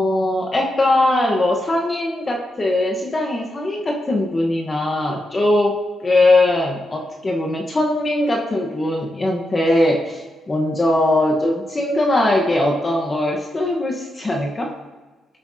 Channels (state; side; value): normal; both; correlation 0.86